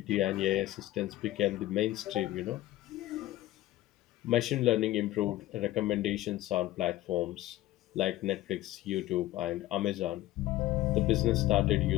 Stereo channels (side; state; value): right; quieter; 15.7 dB